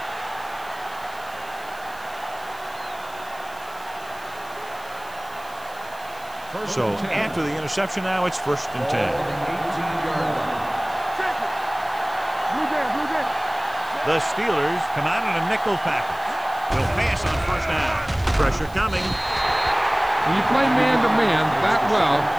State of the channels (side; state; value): right; noise; hiss, 22 dB below the sound